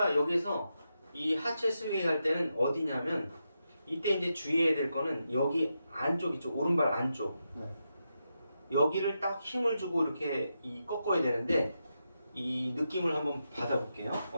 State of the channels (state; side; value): inverted; both; correlation -0.86